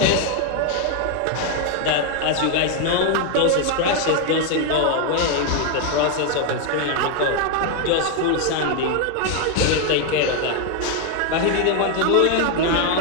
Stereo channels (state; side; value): different; both; correlation 0.01